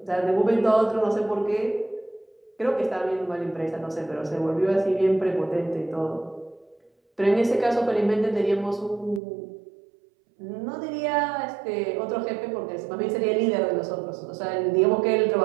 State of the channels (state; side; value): drops out; left; at 9.2 s